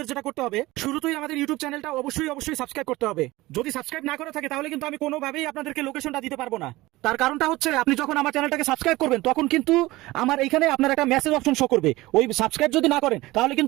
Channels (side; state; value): left; quieter; 19.3 dB